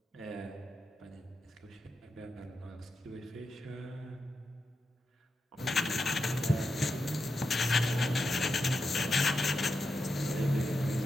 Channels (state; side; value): normal; both; correlation 0.87